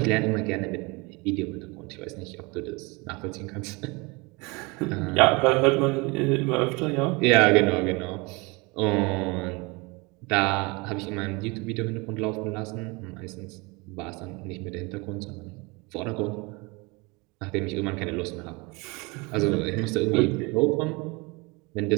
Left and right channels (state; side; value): quieter; left; 26.9 dB